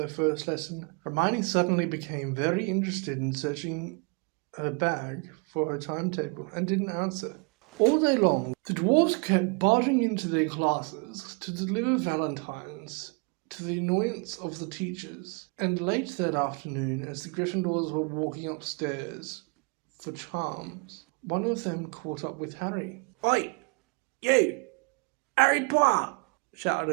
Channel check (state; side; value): quieter; left; 33.0 dB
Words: first lesson. Hermione suddenly became very interested in searching her bag for her timetable and didn't answer. All day long, the dwarves kept barging into their classes to deliver valentines to the annoyance of the teachers, and late that afternoon, as the Gryffindors were walking upstairs for charms, one of them caught up with Harry. "Oi, you! Harry Potter!"